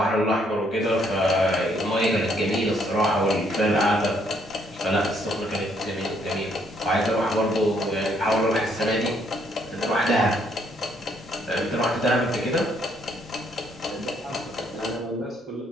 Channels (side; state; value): both; normal; correlation 0.69